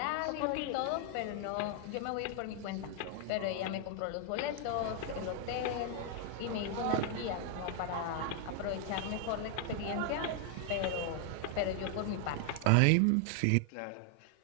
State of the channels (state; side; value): different; both; correlation 0.00